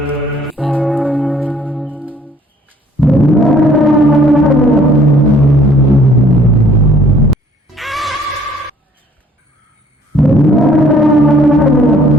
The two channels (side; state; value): both; normal; correlation 0.59